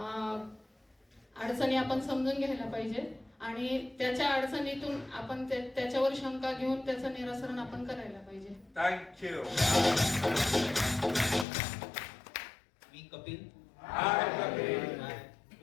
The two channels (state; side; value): drops out; right; at 11.5 s